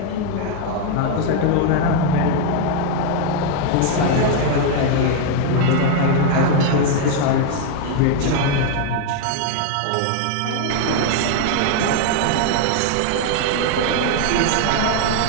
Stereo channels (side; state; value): both; different; correlation 0.00